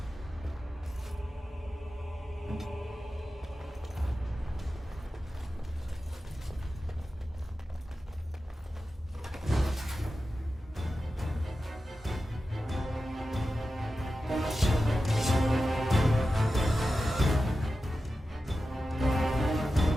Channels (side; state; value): both; normal; correlation 0.93